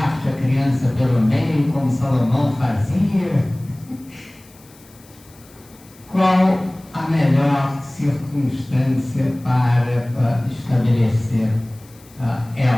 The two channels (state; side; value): noise; left; hiss, 26 dB below the sound